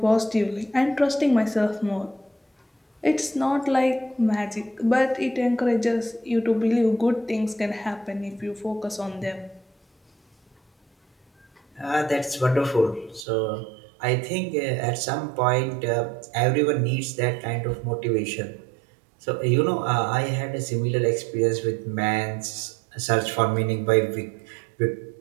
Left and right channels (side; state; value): left; drops out; at 13.2 s